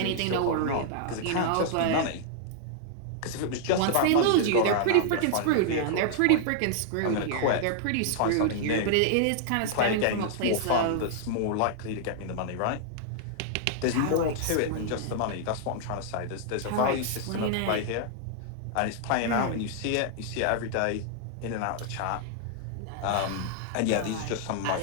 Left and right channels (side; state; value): both; different; correlation -0.01